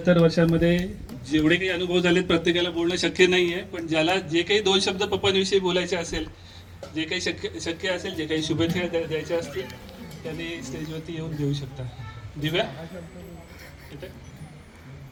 वर्षांमध्ये जेवढे काही अनुभव झालेत प्रत्येकाला बोलणं शक्य नाही आहे, पण ज्याला जे काही दोन शब्द पप्पांविषयी बोलायचे असेल, जे काही शक्य असेल, जे काही शुभेच्छा द्यायच्या असतील त्यांनी स्टेजवरती येऊन देऊ शकता. दिव्या इथे.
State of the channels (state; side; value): identical; both; correlation 1.00